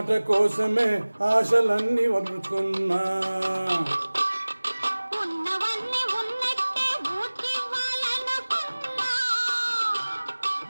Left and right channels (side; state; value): both; inverted; correlation -1.00